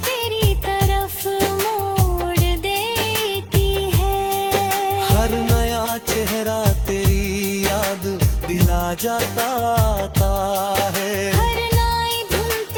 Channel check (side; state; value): both; identical; correlation 1.00